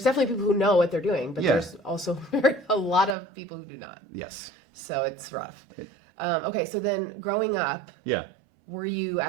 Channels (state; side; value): drops out; left; at 3.2 s